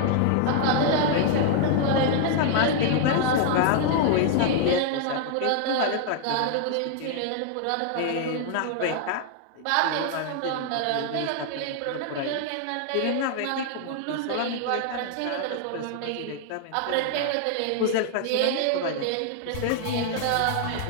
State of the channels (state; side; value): different; both; correlation 0.00